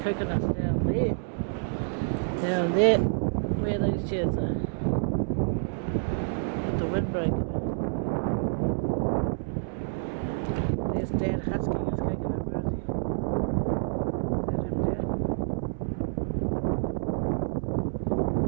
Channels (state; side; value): silent; left; 59 dB below the other